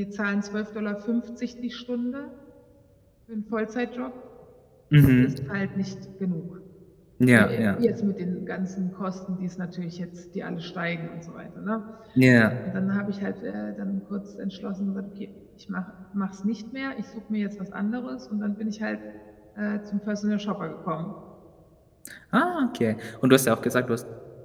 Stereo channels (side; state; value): both; identical; correlation 1.00